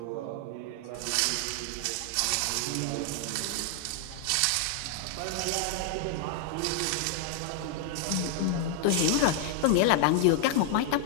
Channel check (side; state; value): both; different; correlation 0.00